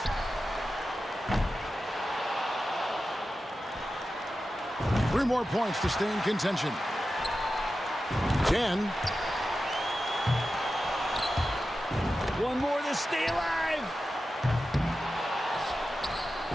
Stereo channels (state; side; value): normal; both; correlation 0.92